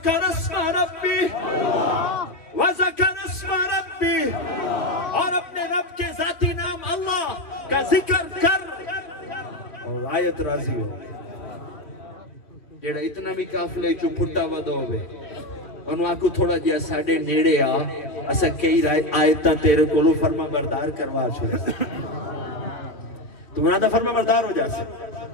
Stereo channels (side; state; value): right; late; 2.4 ms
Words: अस्मा रब्बी, वज़कर अस्मा रब्बी, और अपने रब के जाती नाम अल्लाह का जिक्र कर और आयत राजी हो। जेड़ा इतना भी काफले चो फुटा वदो होवे ओनु आखो थोड़ा जिहा साडे नेड़े आ, असा कई आयतां तेरे कोलों फरमा बरदार करवा छड़े। तू ना दा फरमा बरदार हो जासे,